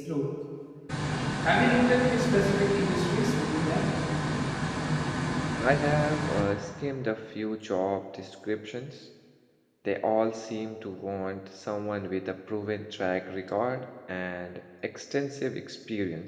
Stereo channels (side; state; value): both; identical; correlation 1.00